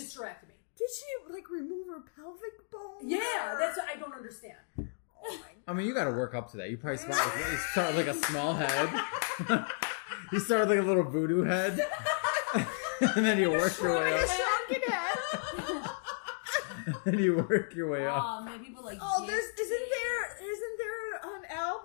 Did she like remove her pelvic bone? Yeah, that's what I don't understand. I mean, you got to work up to that. You probably start with like a small head. You start with like a little voodoo head, and then you work your way Like a up. shrunken head. And you work your way up. Oh, man, people like. Oh, this. isn't there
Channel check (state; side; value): silent; right; digital silence